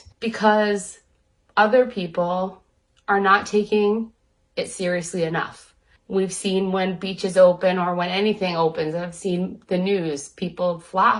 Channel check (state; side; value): identical; both; correlation 1.00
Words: because other people are not taking it seriously enough. We've seen when beaches open or when anything opens, I've seen the news, people